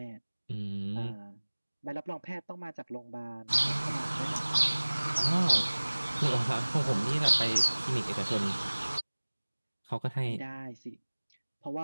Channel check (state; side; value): inverted; both; correlation -1.00